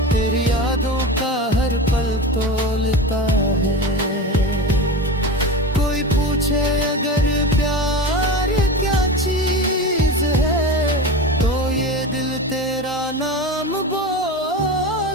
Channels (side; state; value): both; normal; correlation 0.27